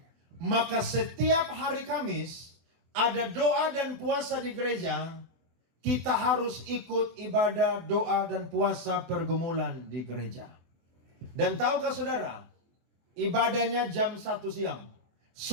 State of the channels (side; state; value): left; late; 24 ms